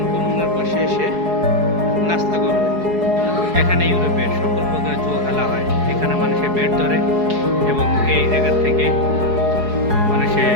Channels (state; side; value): late; left; 4.7 ms